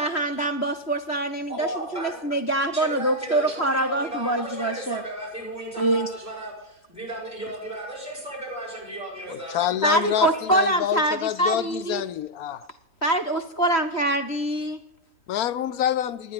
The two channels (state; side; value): late; right; 3.1 ms